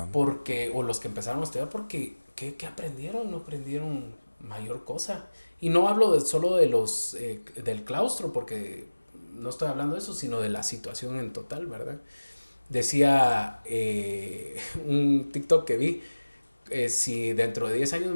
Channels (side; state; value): both; inverted; correlation -1.00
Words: porque, o los que empezaron a estudiar, porque, ¿qué aprendieron? No aprendieron mayor cosa. Y no hablo solo de del claustro, porque no estoy hablando de eso, sino de la situación en total, ¿verdad? decía un TikTok que vi, si dentro de 10 años